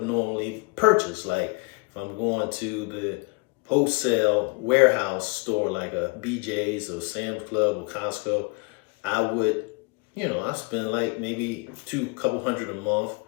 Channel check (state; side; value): quieter; right; 31.1 dB